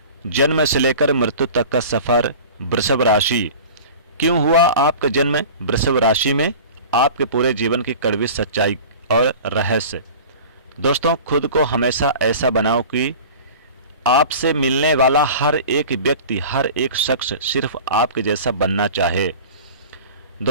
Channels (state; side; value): inverted; both; correlation -0.39